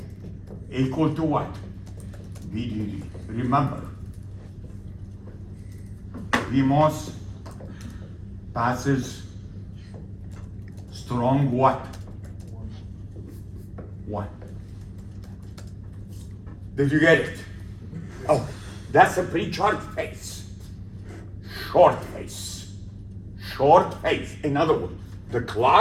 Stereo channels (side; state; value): both; identical; correlation 1.00